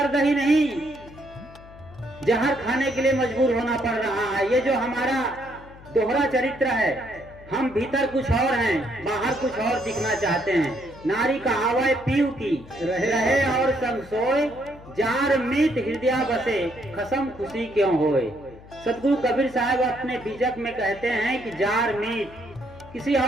ही नहीं, जहर खाने के लिए मजबूर होना पड़ रहा है। ये जो हमारा दोहरा चरित्र है, हम भीतर कुछ और हैं, बाहर कुछ और दिखना चाहते हैं। नारी कहावत पीऊ की रहे और संग सोए, जार मीत हृदय बसे, खसम खुशी क्यों होए। सतगुरु कबीर साहब अपने बीजक में कहते हैं कि जार मीत, किसी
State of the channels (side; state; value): left; noise; hum, 20 dB below the sound